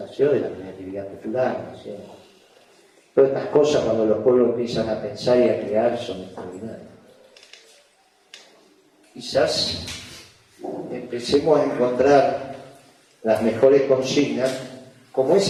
De la creatividad popular, nació. Todas estas cosas, cuando los pueblos empiezan a pensar y a crear, son extraordinarias. Quizás empecemos a encontrar las mejores consignas, como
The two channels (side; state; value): both; identical; correlation 1.00